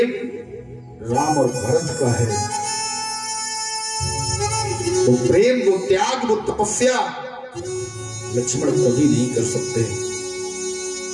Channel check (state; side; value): identical; both; correlation 1.00